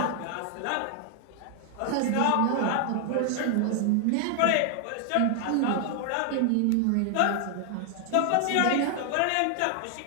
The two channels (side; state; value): both; different; correlation 0.00